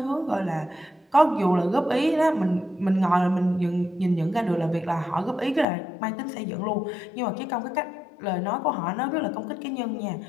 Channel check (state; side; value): drops out; right; at 5.7 s